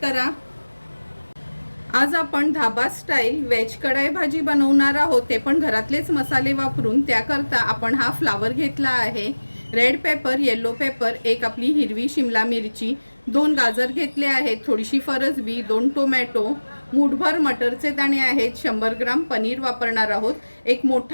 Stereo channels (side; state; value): both; inverted; correlation -1.00